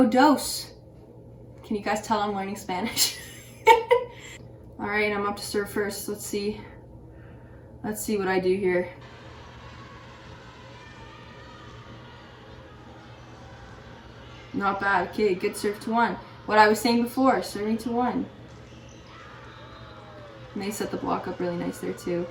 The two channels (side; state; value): both; identical; correlation 1.00